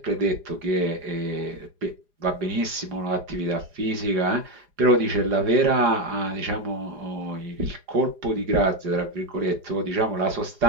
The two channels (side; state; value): left; late; 4.9 ms